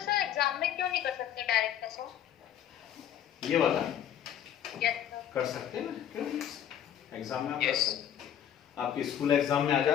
सर एग्जाम में क्यों नहीं कर सकते डायरेक्ट ऐसा, ये वाला यस सर, कर सकते हैं ना, क्यों एग्जाम में आप कर Yes. सकते, आपके स्कूल एग्जाम में आ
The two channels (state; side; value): quieter; right; 9.9 dB